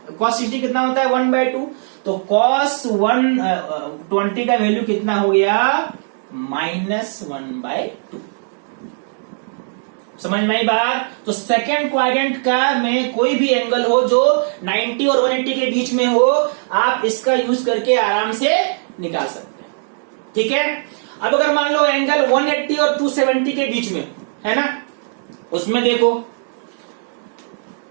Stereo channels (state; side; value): silent; left; digital silence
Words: कॉस 60 कितना होता है? 1/2। तो कॉस 120 का वैल्यू कितना हो गया? माइनस 1/2। समझ में आई बात? तो सेकेंड क्वाड्रेंट का में कोई भी एंगल हो जो 90 और 180 के बीच में हो, आप इसका यूज करके आराम से निकाल सकते हैं। ठीक है। अब अगर मान लो एंगल 180 और 270 के बीच में है ना, उसमें देखो